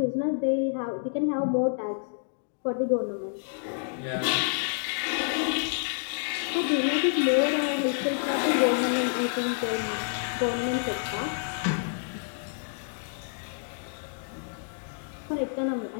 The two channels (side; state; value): right; silent; digital silence